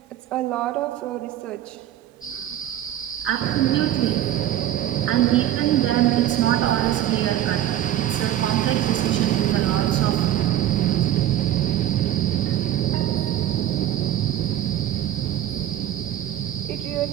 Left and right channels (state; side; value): quieter; left; 12.5 dB